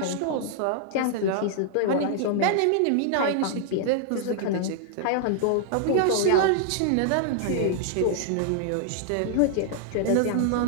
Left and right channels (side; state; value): both; different; correlation 0.00